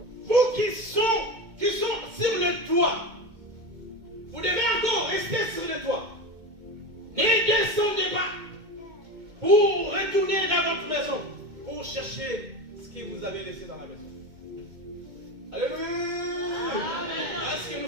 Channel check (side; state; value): left; late; 2.2 ms